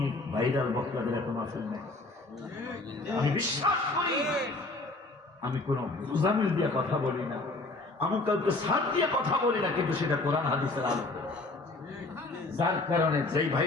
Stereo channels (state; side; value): quieter; right; 3.1 dB